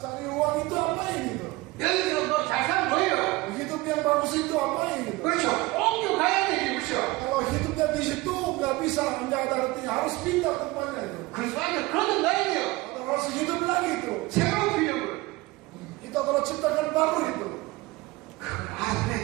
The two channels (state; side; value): quieter; left; 20.9 dB